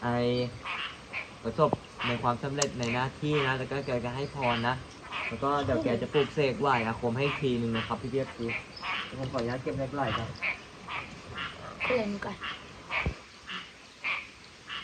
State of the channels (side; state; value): both; identical; correlation 1.00